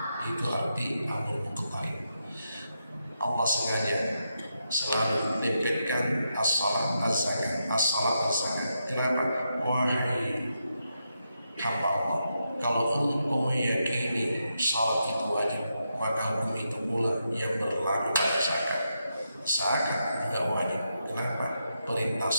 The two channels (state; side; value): inverted; both; correlation -0.84